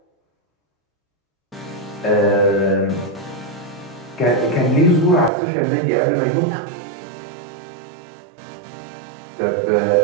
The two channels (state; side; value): drops out; left; at 5.3 s